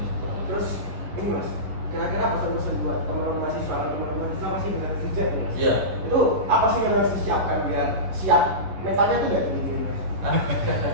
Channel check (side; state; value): left; late; 11 ms